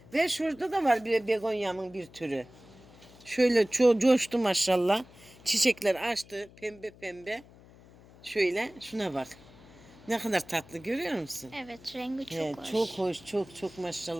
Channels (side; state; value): left; noise; hum, 23 dB below the sound